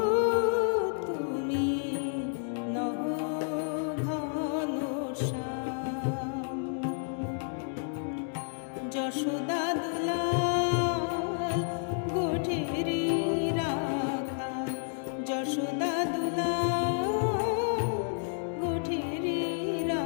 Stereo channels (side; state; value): right; silent; digital silence